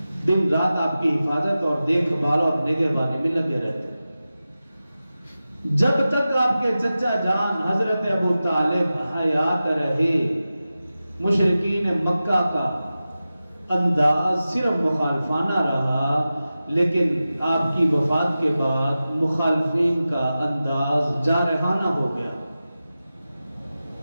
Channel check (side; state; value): both; inverted; correlation -0.94